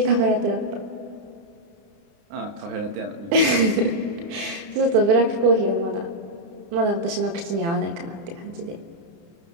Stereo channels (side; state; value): left; late; 30 ms